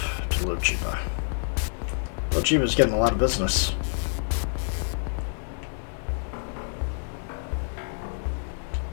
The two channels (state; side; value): silent; right; 60 dB below the other